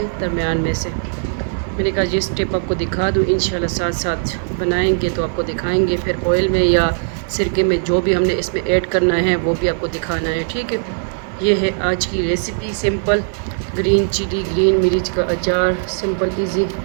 दरमियान में से मैंने कहा ये स्टेप आपको दिखा दूँ, इंशाल्लाह साथ साथ बनाएंगे तो आपको दिखाएंगे। फिर ऑयल में या सिरके में जो भी हमने इसमें ऐड करना है वो भी आपको दिखाना है। ठीक है, ये है आज की recipe, simple green chilli green मिर्च का अचार। सिंपल इजी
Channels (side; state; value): left; silent; 67 dB below the other